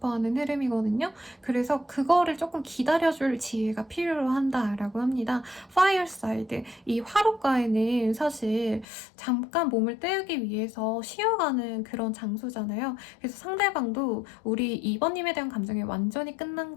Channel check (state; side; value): drops out; right; at 8.8 s